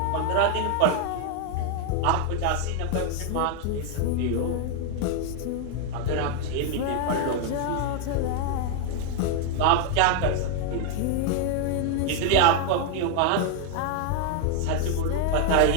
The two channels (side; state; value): both; different; correlation 0.00